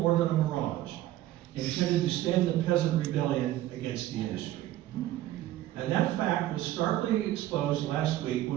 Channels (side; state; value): left; quieter; 14.4 dB